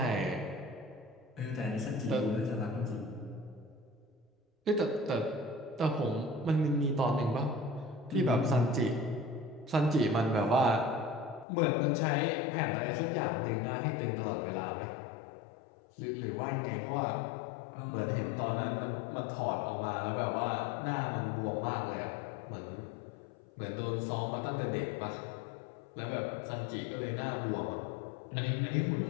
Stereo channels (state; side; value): drops out; right; at 11.5 s